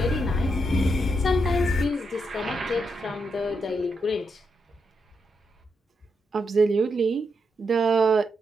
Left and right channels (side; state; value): both; normal; correlation 0.82